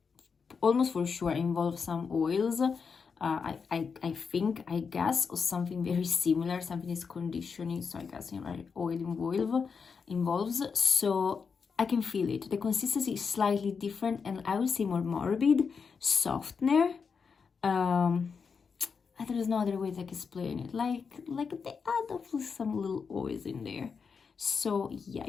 almost for sure involves some oils, I think, I guess, or something very similar, something is conditioning, so I guess, you know, oil involves, so I can feel it. The consistency is slightly different, and I would say more morbid, softener. There is no other way to explain it. Like they add up some little oils in there. So yeah,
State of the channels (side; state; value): right; quieter; 5.7 dB